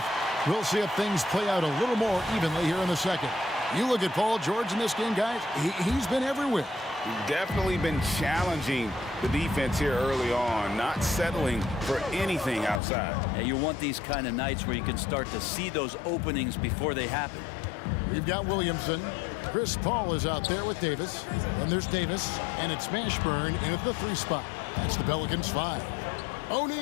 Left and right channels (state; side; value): drops out; right; at 12.8 s